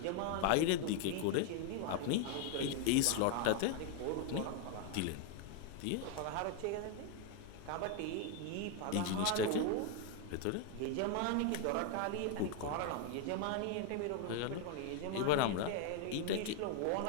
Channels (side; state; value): both; different; correlation 0.01